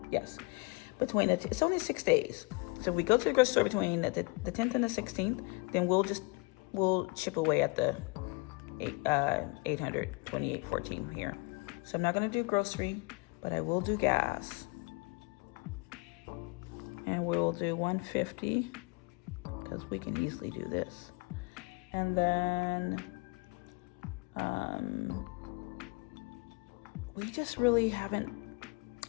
Yes, between it's only 6 days. So if we go to the grocery store between the 10th and the 16th, then we'll chip away at the 828.14 here. So I'm not going to do grocery, but I will do gas. And we'll do 150 because we can easily do this. And then we just really haven't,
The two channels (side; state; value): right; quieter; 27.9 dB